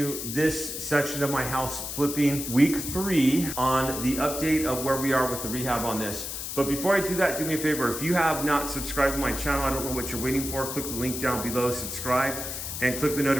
this section of my house flipping week 3 on the update of where we are with the rehab on this. But before I do that, do me a favor. If you have not subscribed to my channel, I don't know what you're waiting for, click the link down below, subscribe, and click the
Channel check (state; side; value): noise; left; hiss, 6 dB below the sound